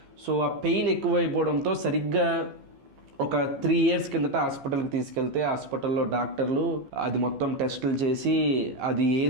సో ఆ పెయిన్ ఎక్కువైపోవడంతో సరిగ్గా ఒక 3 ఇయర్స్ కిందట హాస్పిటల్కి తీసుకెళ్తే హాస్పిటల్లో డాక్టర్లు అది మొత్తం టెస్టులు చేసి అది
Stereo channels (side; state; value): left; late; 15 ms